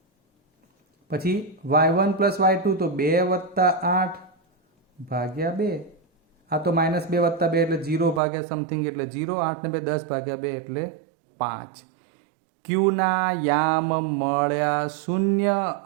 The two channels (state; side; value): drops out; left; at 8.2 s